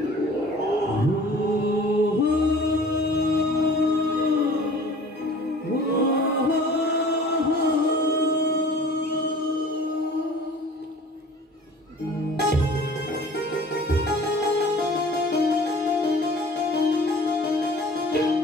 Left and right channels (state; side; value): normal; both; correlation 0.46